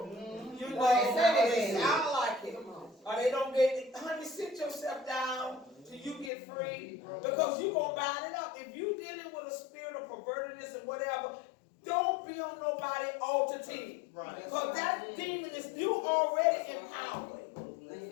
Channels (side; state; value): right; drops out; at 6.3 s